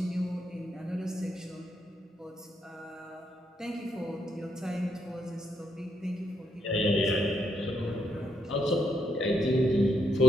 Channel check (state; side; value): normal; both; correlation 0.78